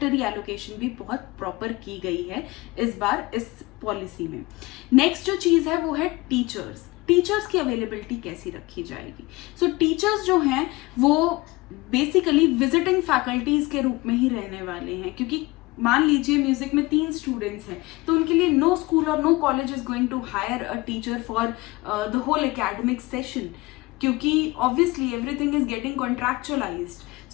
एलोकेशन भी बहुत प्रॉपर की गई है इस बार इस पॉलिसी में। नेक्स्ट जो चीज है वो है टीचर्स की अवेलेबिलिटी कैसी रखी जाएगी। सो टीचर्स जो हैं वो बेसिकली विजिटिंग फैकल्टीज के रूप में ही रहने वाले हैं, क्योंकि मान लीजिए म्यूजिक में 3 स्टूडेंट्स हैं, तो उनके लिए नो स्कूल और no college is going to hire a teacher for the whole academic session, क्योंकि obviously everything is getting contractualized.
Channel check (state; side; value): quieter; right; 22.0 dB